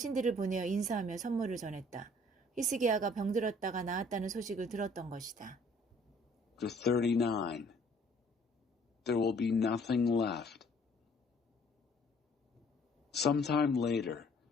보내어 인사하며 선물을 전했다. 히스기야가 병들었다가 나았다는 소식을 들었던 것이다. Chapter 39. There will be nothing left. Sometime later,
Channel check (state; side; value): normal; both; correlation 0.58